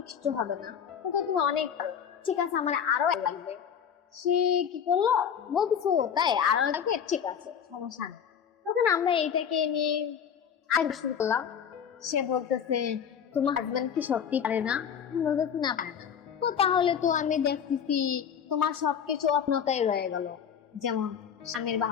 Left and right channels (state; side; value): quieter; right; 7.9 dB